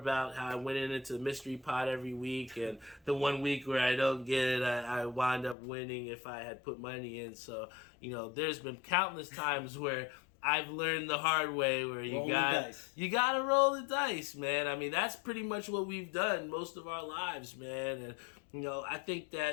how I went into the mystery pot every week, and the 1 week where I don't get it, I wind up winning if I had put money in. So, there's been countless times where I've learned the hard way where you got to roll the dice, man. I mean, that's pretty much what we've done most of our lives, man. And, I think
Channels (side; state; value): right; drops out; at 5.6 s